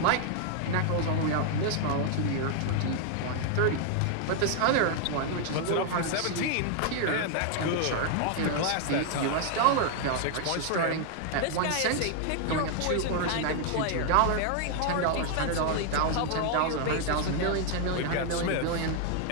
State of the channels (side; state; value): both; different; correlation 0.00